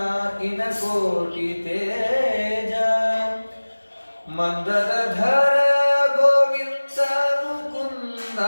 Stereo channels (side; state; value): both; inverted; correlation -1.00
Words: ಇನ ಕೋಟಿ ತೇಜ ಮಂದರಧರ ಗೋವಿಂದ ಮುಕುಂದ